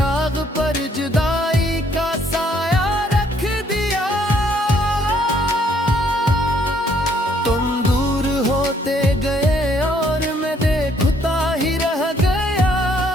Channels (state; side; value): normal; both; correlation 0.66